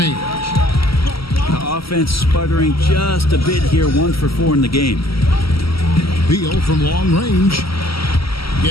The offense sputtering just a bit here, 1 for 4 in the game. Beal from long range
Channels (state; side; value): late; right; 0.75 ms